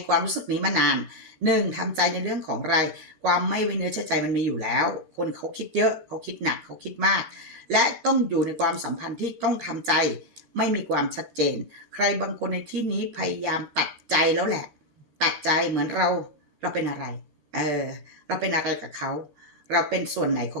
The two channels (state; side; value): late; left; 13 ms